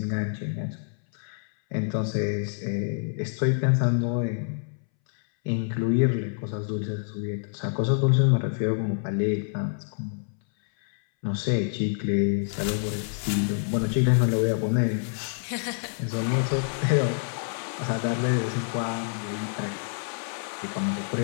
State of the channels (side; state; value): right; silent; 60 dB below the other